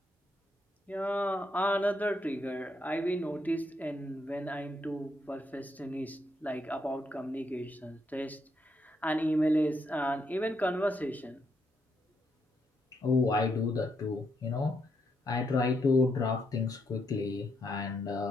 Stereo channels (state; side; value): normal; both; correlation 0.78